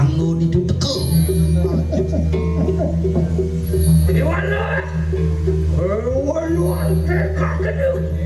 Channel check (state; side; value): identical; both; correlation 1.00